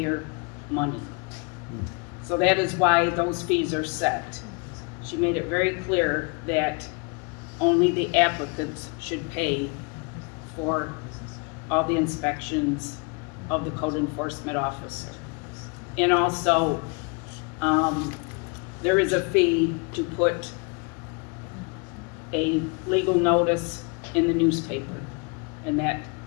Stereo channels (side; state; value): right; quieter; 32.8 dB